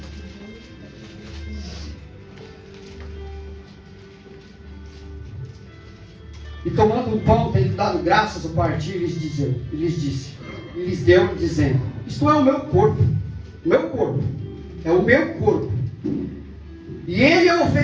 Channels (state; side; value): identical; both; correlation 1.00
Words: E tomando um pão, tendo dado graças ao partir, lhes deu, dizendo: isto é o meu corpo, é o meu corpo, e ele é